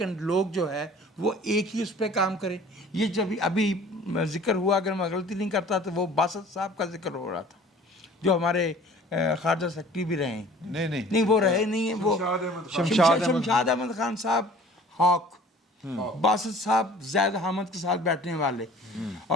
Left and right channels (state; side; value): normal; both; correlation 0.48